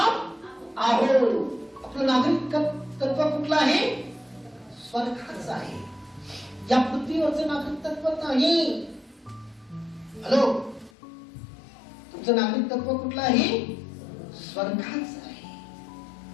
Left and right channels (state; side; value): drops out; right; at 10.9 s